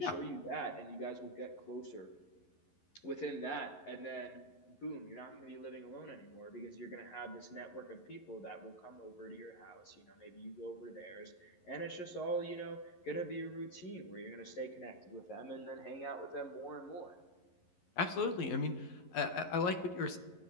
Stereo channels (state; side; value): late; right; 11 ms